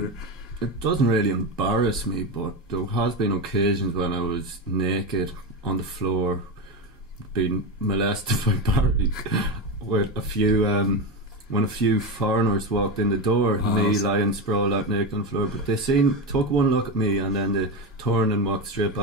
It doesn't really embarrass me, but there has been occasions when I was naked on the floor, being molested by Barry, with a few when a few foreigners walked in the door, me lying sprawled out naked on the floor. But they took one look at me, and then they turned and walked straight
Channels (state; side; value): normal; both; correlation 0.17